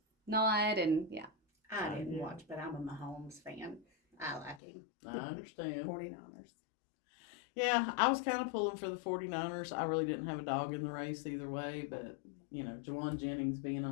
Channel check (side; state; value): right; drops out; at 4.6 s